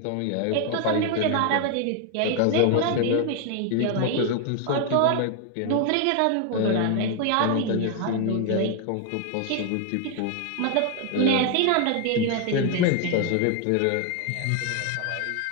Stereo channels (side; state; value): both; different; correlation 0.01